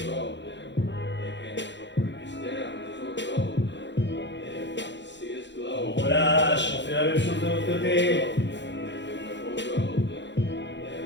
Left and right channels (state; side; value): late; right; 0.52 ms